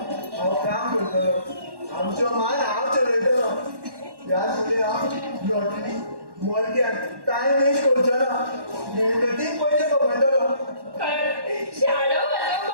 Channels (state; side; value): late; left; 1.1 ms